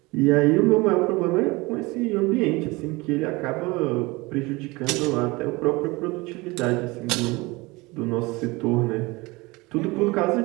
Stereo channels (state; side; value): quieter; left; 23.4 dB